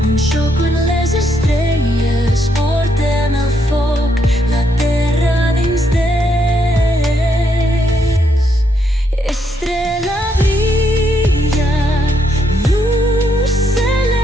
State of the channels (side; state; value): both; normal; correlation 0.76